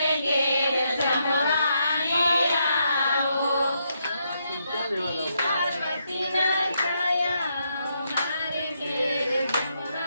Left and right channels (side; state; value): both; inverted; correlation -0.79